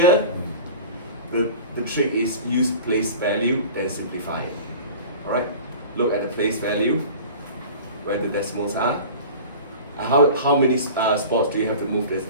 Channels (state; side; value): inverted; both; correlation -0.38